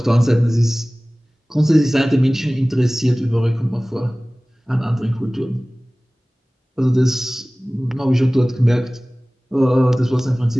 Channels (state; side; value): normal; both; correlation 0.98